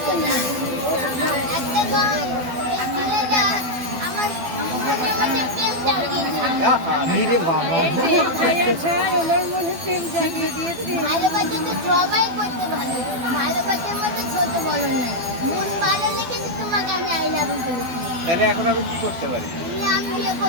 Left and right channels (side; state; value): left; late; 12 ms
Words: ভালোবাসা তো সবাই করতে ভালো, ভালোবাসার মধ্যে ছোট বড় না। মন ভালো লেগেছে তোমাকে, আমি আই লাভ ইউ বলেছি। তাহলে এখন আমি কি করতে পারি? তুমি আমি বিয়ে